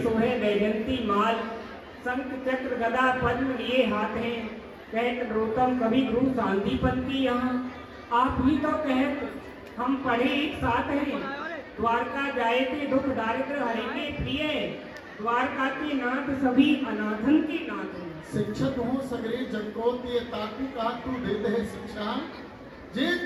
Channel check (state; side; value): identical; both; correlation 1.00